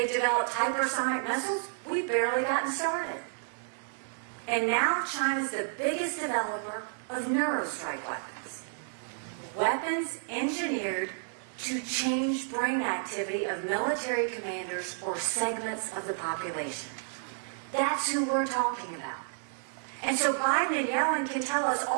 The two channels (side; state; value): left; silent; digital silence